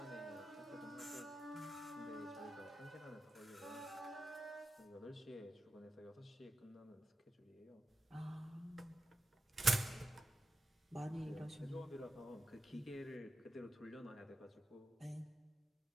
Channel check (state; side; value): normal; both; correlation 0.91